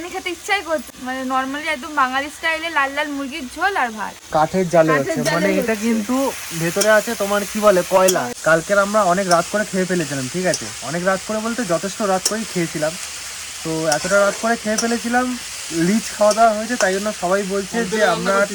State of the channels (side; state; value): both; identical; correlation 1.00